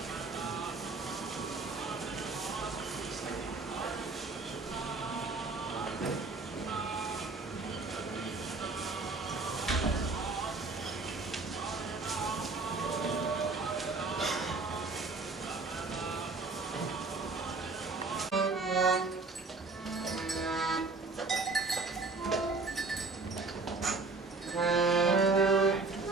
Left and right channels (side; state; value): left; quieter; 3.9 dB